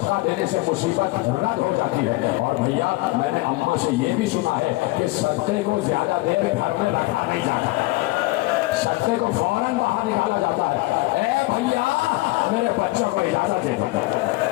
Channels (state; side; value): quieter; right; 20.9 dB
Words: دینے سے مصیبت رد ہو جاتی ہے, اور بھیا میں نے اماں سے یہ بھی سنا ہے کہ صدقے کو زیادہ دیر گھر میں رکھا نہیں جاتا, صدقے کو فوراً باہر نکالا جاتا ہے. اے بھیا میرے بچوں کو اجازت دے دو,